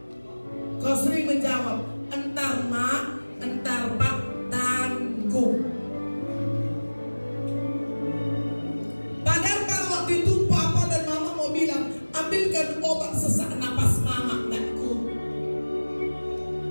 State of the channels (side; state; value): both; inverted; correlation -1.00